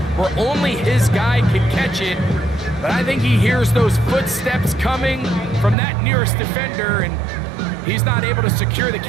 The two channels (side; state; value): left; drops out; at 5.8 s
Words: where only his guy can catch it. But I think he hears those footsteps coming from that nearest defender, and he's not able to secure the